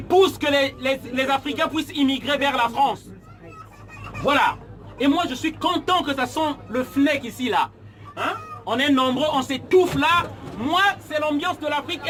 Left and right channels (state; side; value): identical; both; correlation 1.00